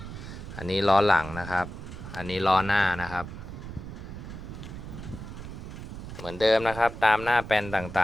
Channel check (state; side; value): noise; right; rumble, 10 dB below the sound